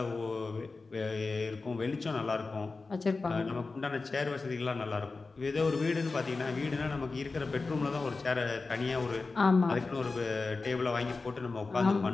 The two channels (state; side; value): quieter; right; 3.9 dB